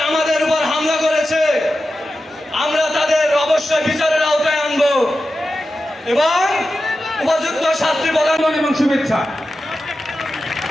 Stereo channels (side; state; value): both; normal; correlation 0.92